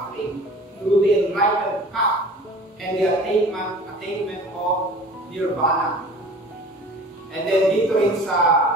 through the enlightened path and the attainment of nirvana. And then dito rin sa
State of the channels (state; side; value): normal; both; correlation 0.44